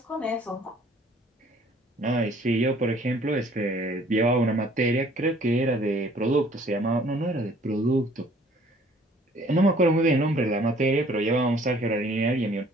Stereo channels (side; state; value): both; normal; correlation 0.57